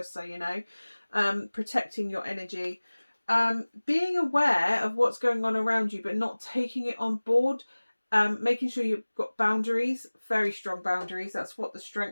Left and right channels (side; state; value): both; inverted; correlation -1.00